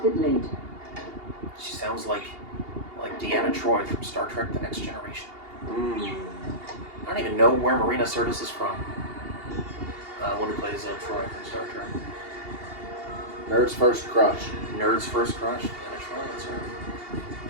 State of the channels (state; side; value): late; left; 2.8 ms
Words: it later. She sounds like Deanna Troi from Star Trek: The Next Generation. I don't even know where Marina Sirtis is from. One who plays Troi from Star Trek. Nerd's First Crush. Nerd's First Crush. Deanna Troi, that's her.